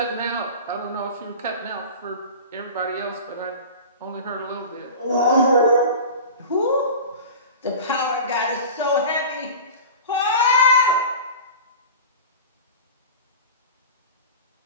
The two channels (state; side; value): inverted; both; correlation -0.34